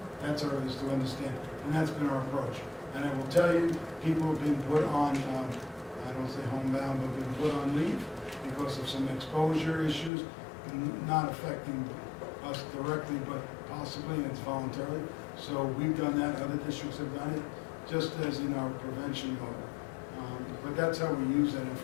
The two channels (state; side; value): drops out; right; at 10.1 s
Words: That's our, is to understand, and that's been our approach. And I will tell you, people have been put on, I don't say homebound, but been put on leave because of some exposure issues, not affecting us directly, but possibly, and it's voluntarily. So we've done that, other districts have done it, just as in our prevention mode. But that's how we use that